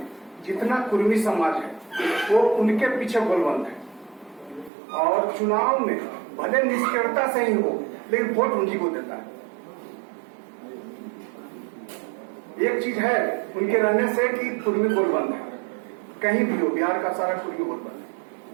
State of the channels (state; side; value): drops out; left; at 4.7 s